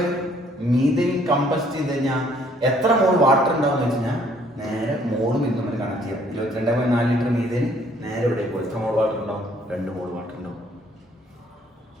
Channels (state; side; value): normal; both; correlation 0.62